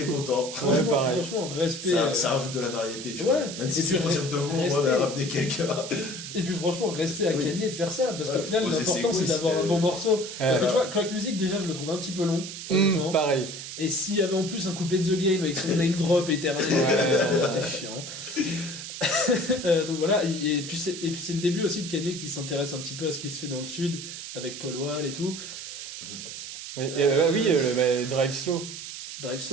content. Ouais, pareil. franchement, respect. Ça rajoute de la variété, tu Ouais. vois. Même si Et c'est puis, pour dire de mots, moi, respect. de ramener quelqu'un. Et puis franchement, respect à Oui. Kanye de faire ça, parce Ouais, qu'au final, poser ses l'important c'est couilles, d'avoir un c'était- bon morceau. Parce que Ouais. tu vois, Crack Music, déjà, je le trouve un petit peu long, honnêtement. Pareil. Et s'il y avait en plus un couplet de The Game avec son name drop éternel, c'était chiant. Donc voilà, et puis c'est le début aussi de Kanye qui s'intéresse un petit peu à ce qui se fait dans le sud, avec Paul Wall et tout. Oui, Drive Slow. Drive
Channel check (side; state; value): right; noise; hiss, 9 dB below the sound